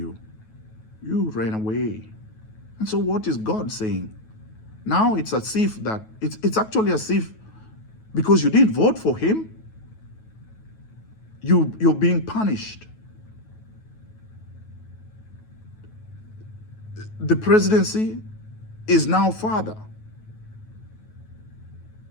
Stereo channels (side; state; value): right; late; 9.3 ms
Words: you ran away. And so what is God saying? Now it's as if that, it's actually as if because you didn't vote for him, you're being punished. The presidency is now father.